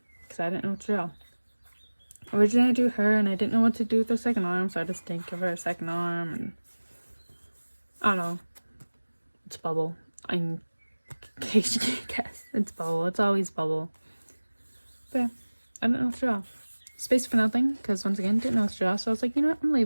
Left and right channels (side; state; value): both; inverted; correlation -1.00